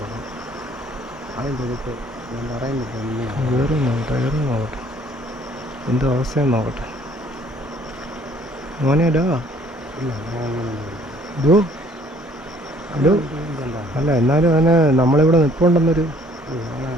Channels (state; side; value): normal; both; correlation 0.59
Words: അതിൻ്റെ എടുത്ത് ഞാൻ പറയുന്നില്ല. കയറി നോക്കട്ടെ എന്തോ അവസ്ഥയെന്ന് നോക്കട്ടെ. മോനെ ഡോ ഇല്ല ഡോ ഡോ അല്ല, എന്നാലും അവന് നമ്മളിവിടെ നിൽപ്പുണ്ടെന്നൊരു